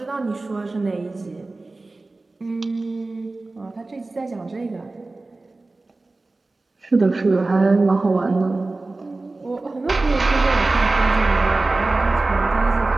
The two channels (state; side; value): quieter; left; 3.3 dB